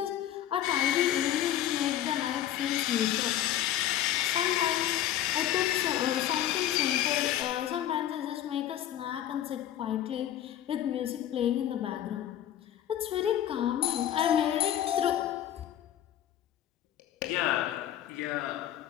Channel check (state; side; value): quieter; right; 11.7 dB